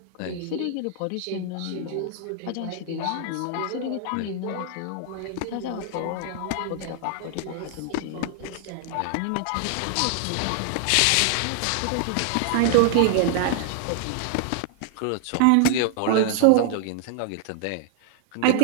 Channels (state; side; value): different; both; correlation 0.00